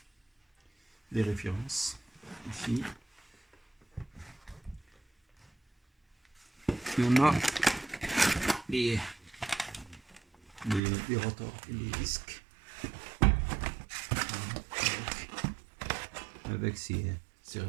les références ici, et on a les rotors et les disques avec ces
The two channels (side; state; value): left; drops out; at 10.8 s